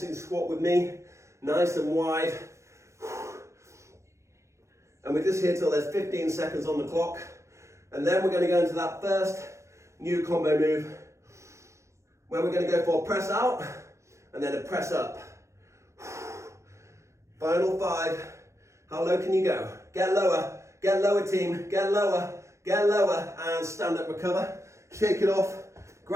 squat with me, nice and wide. And we're just here till there's 15 seconds on the clock. And then we're going to go into that first new combo move, where we're going to go for a press out and then a press up. Final 5. How low can you go? Get lower team, get lower, and stand up, recover. Shake it off,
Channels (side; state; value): left; late; 0.14 ms